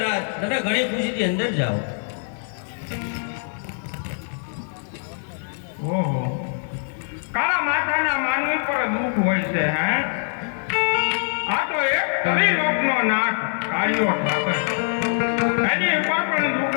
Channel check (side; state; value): right; silent; 57 dB below the other